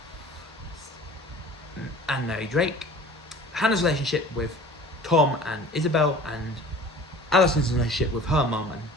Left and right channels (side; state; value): both; normal; correlation 0.43